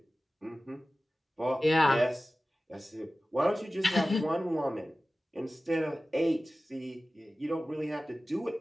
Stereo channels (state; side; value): normal; both; correlation 0.96